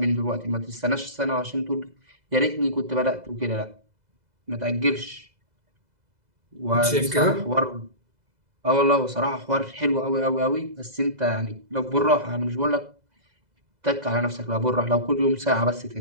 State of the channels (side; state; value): left; late; 2.0 ms